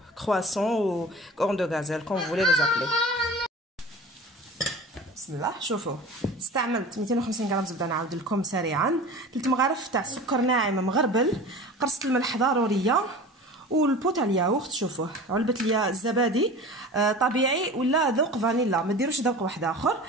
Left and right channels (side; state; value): both; normal; correlation 0.37